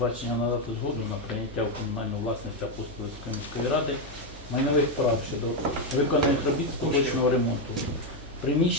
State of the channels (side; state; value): both; normal; correlation 0.06